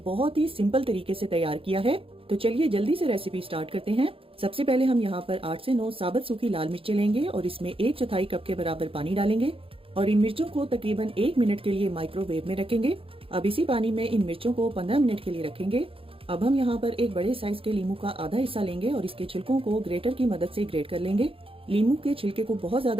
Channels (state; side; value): late; left; 0.27 ms